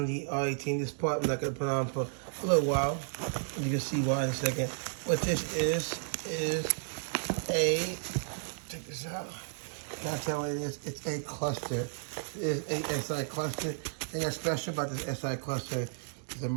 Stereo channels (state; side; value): silent; left; digital silence